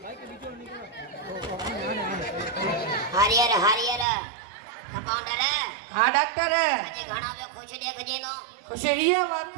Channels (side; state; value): left; drops out; at 4.0 s